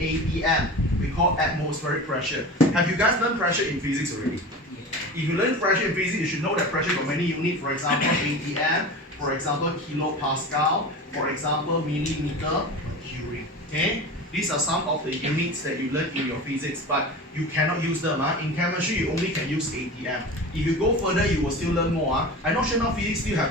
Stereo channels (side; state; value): both; normal; correlation 0.32